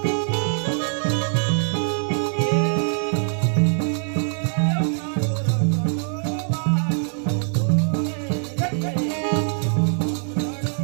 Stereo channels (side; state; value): left; silent; 61 dB below the other